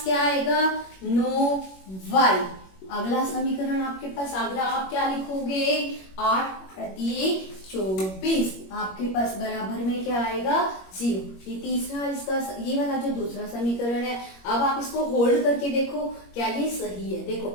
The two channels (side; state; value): right; late; 21 ms